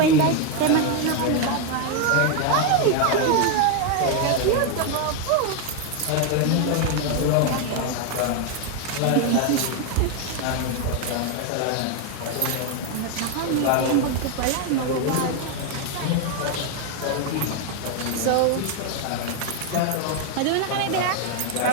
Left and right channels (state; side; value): different; both; correlation 0.01